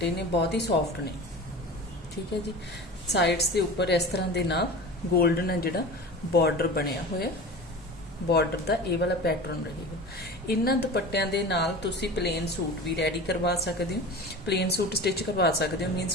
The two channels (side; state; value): both; normal; correlation 0.34